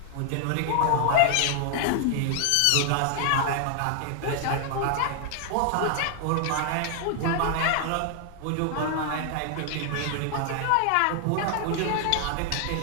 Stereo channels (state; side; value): different; both; correlation 0.00